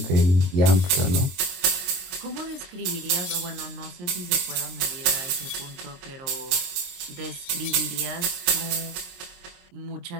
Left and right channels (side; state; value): left; late; 22 ms